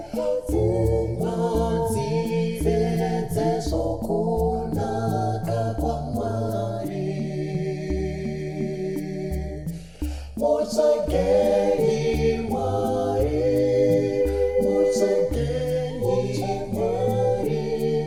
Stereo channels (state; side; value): identical; both; correlation 1.00